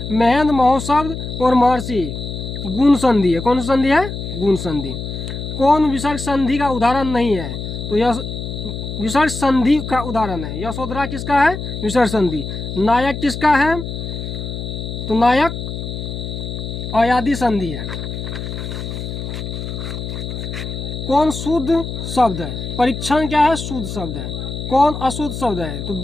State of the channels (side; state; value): left; noise; hum, 6 dB below the sound